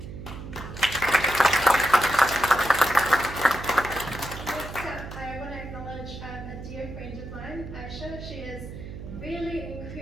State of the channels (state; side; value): noise; right; hum, 11 dB below the sound